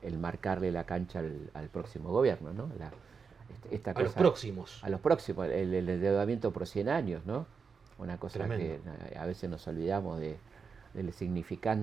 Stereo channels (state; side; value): quieter; left; 5.6 dB